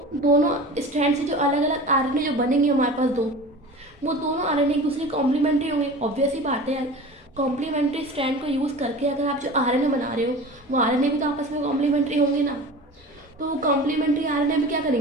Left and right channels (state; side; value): normal; both; correlation 0.36